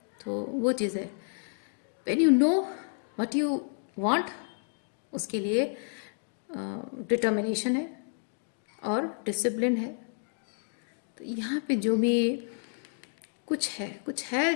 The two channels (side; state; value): right; silent; 57 dB below the other